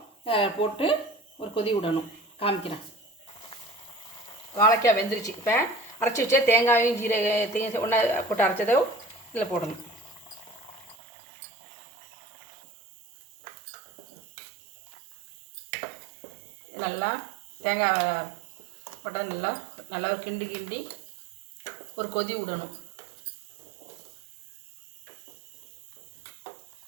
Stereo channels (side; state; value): left; drops out; at 11.0 s